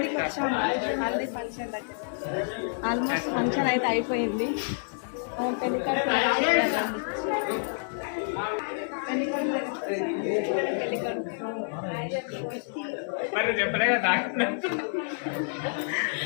వచ్చాము హల్దీ ఫంక్షన్ దగ్గర. ఆల్మోస్ట్ ఫంక్షన్ అయితే అయిపోయింది.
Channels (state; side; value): silent; right; 59 dB below the other